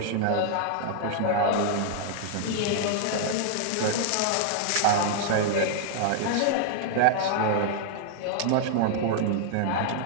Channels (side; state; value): both; different; correlation -0.01